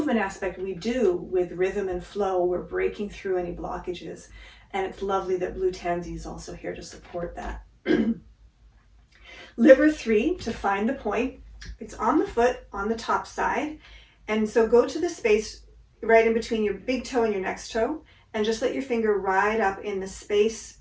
aspect, we do with rhythm and flow, we're breaking through any blockages. And it's lovely that blue tansy is also here to support that. Liver 3, to find the point, it's on the foot, on the top side. And so go to the space right in between your big toe and your next toe, and just let your finger ride up in the space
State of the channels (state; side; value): identical; both; correlation 1.00